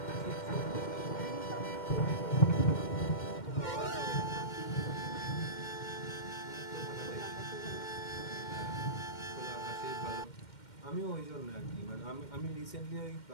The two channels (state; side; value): late; right; 2.1 ms